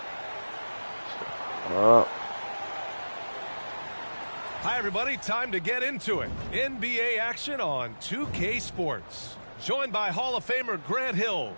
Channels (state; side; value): inverted; both; correlation -1.00